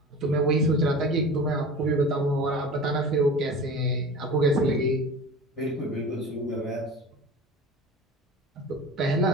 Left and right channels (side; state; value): both; normal; correlation 0.36